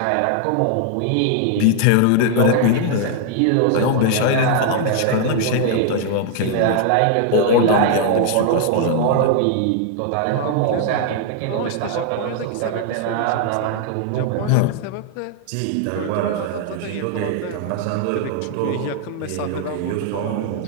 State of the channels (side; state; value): both; different; correlation 0.00